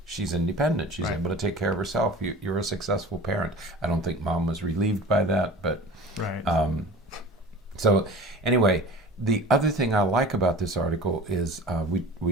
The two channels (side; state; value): both; normal; correlation 0.39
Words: she's independent. She's able to take care of herself. You're a successful parent. I don't think mom was relieved by that. But so anyway, the other thing I like about this article is